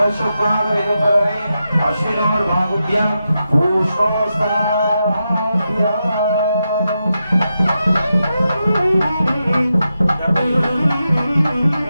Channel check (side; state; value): both; inverted; correlation -0.87